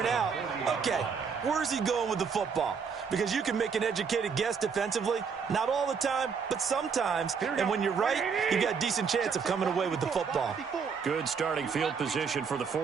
out, okay, where's he going with the football? Because you can make an educated guess defensively. Not all the time, but sometimes. And when you're right, you got a decent chance of coming away with the football. Good starting field position for the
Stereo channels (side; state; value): left; quieter; 6.0 dB